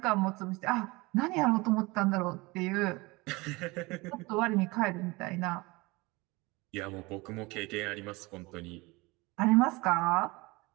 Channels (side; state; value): left; quieter; 23.6 dB